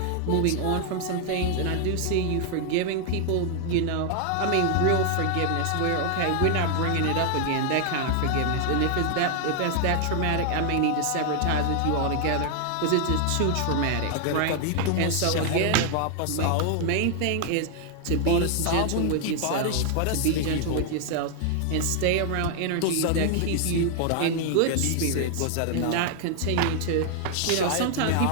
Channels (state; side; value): different; both; correlation 0.00